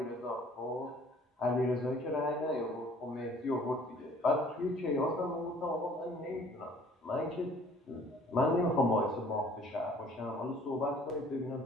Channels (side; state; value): both; normal; correlation 0.55